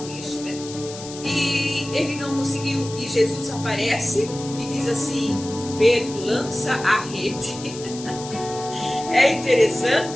peixe, né? E ele não conseguiu, e Jesus aparece e diz assim: Pedro, lança a rede. É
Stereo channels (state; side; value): noise; left; hiss, 13 dB below the sound